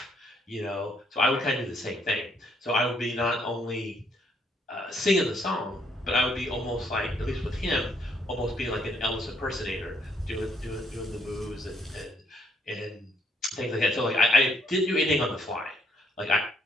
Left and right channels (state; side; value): normal; both; correlation 0.70